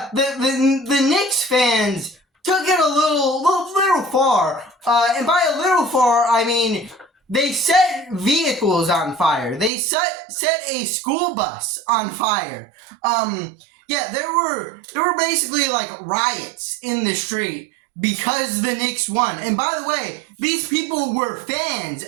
Knicks fans took it a little far, and by a little far, I mean they set vehicles on fire. They set a school bus on fire. There were basically like riots in the street because the Knicks won. And by the way, these people were fans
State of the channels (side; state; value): left; drops out; at 9.7 s